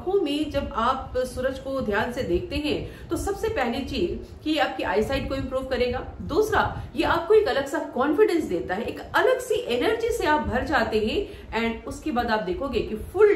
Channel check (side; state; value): both; identical; correlation 1.00